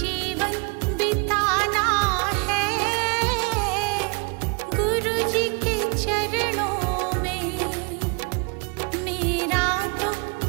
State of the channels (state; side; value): quieter; left; 33.5 dB